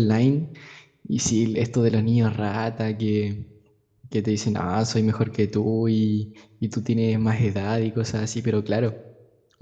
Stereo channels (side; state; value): both; identical; correlation 1.00